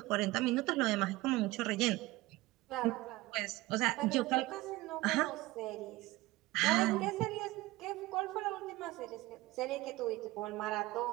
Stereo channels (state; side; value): quieter; left; 19.4 dB